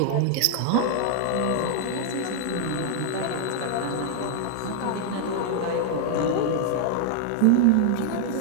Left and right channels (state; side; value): different; both; correlation 0.00